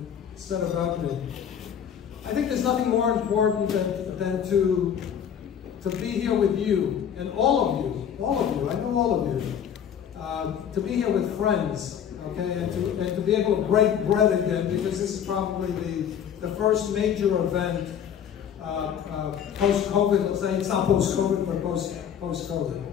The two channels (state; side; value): quieter; right; 8.6 dB